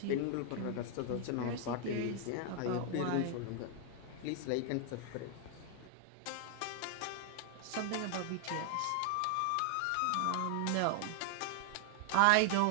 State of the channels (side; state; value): both; different; correlation 0.00